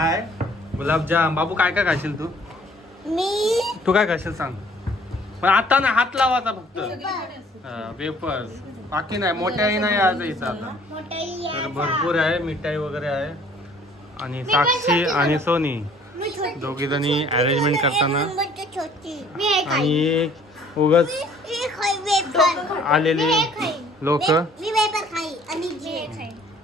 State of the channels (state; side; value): normal; both; correlation 0.57